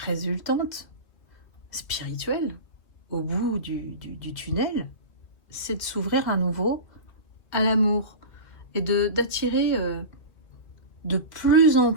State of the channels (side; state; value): right; late; 2.5 ms